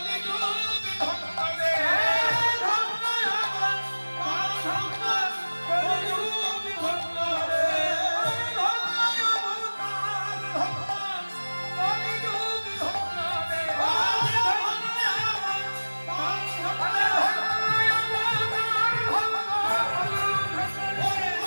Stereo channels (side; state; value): both; inverted; correlation -1.00